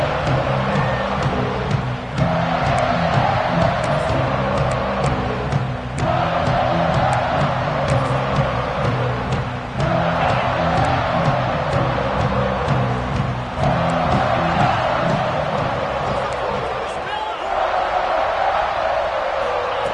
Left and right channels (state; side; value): identical; both; correlation 1.00